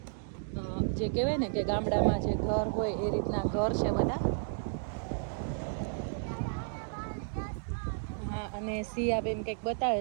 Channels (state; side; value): silent; left; digital silence